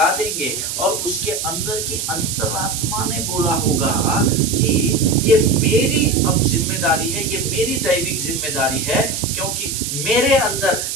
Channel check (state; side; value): noise; right; hiss, 4 dB below the sound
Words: देंगे, और उसके अंदर की अंतरात्मा ने बोला होगा कि ये मेरी अब जिम्मेदारी है, ये मेरी दैविक जिम्मेदारी है, क्योंकि मेरे अंदर